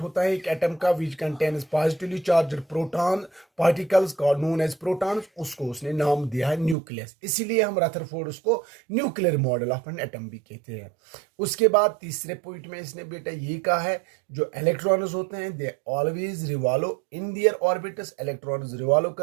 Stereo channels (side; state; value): left; drops out; at 6.8 s